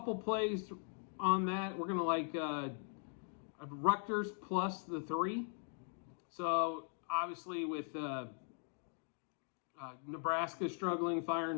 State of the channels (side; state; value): right; silent; 51 dB below the other